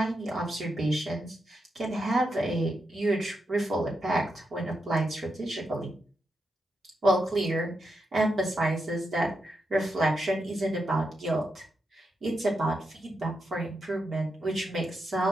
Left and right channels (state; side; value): normal; both; correlation 0.85